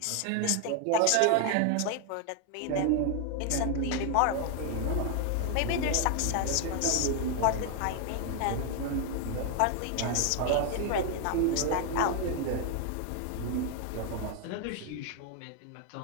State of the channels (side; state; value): both; different; correlation 0.00